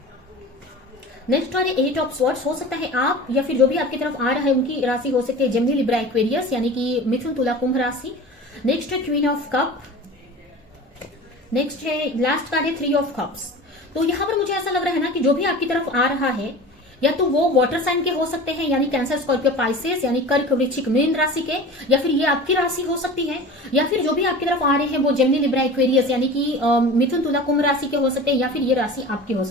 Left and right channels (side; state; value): both; normal; correlation 0.36